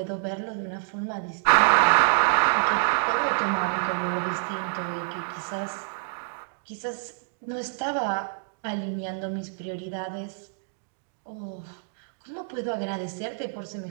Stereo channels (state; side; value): silent; left; digital silence